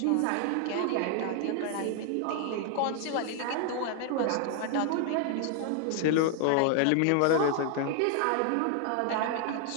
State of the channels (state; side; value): different; both; correlation 0.00